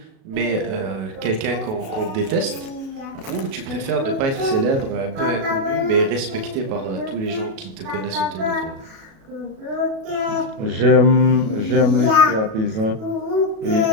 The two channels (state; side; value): late; left; 37 ms